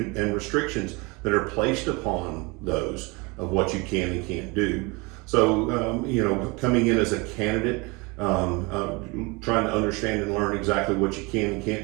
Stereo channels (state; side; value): quieter; left; 27.0 dB